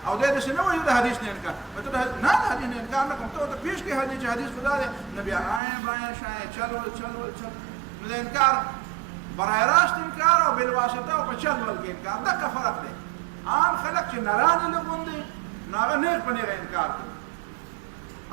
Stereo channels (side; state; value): left; drops out; at 5.6 s